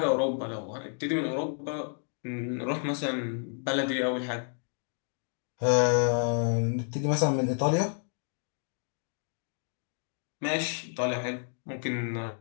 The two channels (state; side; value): silent; right; 57 dB below the other